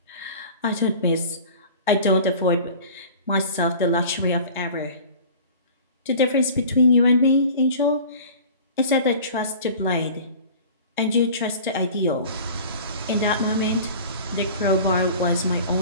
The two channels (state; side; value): inverted; both; correlation -0.41